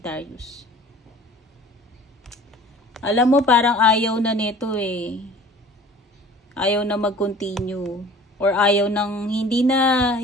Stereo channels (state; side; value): normal; both; correlation 0.46